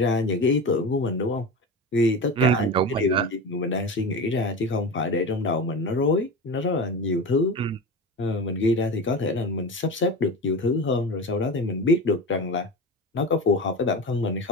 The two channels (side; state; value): both; normal; correlation 0.27